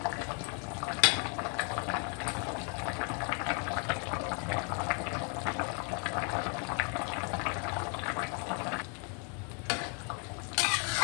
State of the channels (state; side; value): quieter; right; 36.7 dB